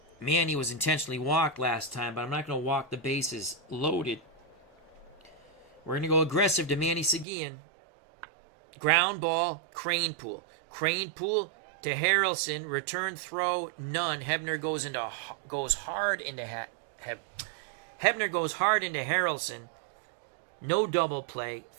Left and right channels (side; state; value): left; drops out; at 7.2 s